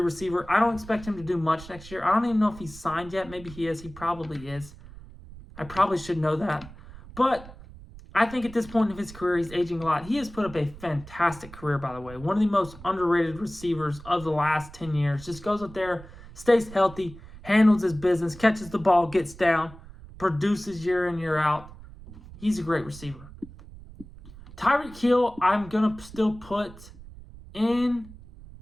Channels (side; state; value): right; noise; rumble, 17 dB below the sound